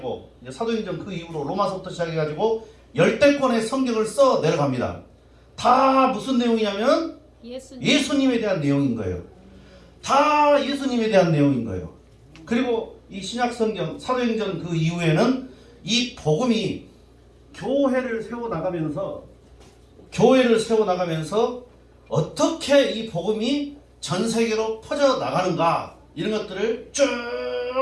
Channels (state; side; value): identical; both; correlation 1.00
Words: 이제 사도행전 그 이후로 로마서부터 시작해가지고 열대권의 성경을 써 내려갑니다. 다 무슨 내용이냐면 예수님에 대한 내용인 거예요. 다 예수님에 대한 내용인 거예요. 그리고 이 신약 성경 사도행전 그 이후에는 이 복음이 교회를 세워나가면서 어떻게 이 복음이 전 세계로 퍼져나가는가 이런 것들을 쭉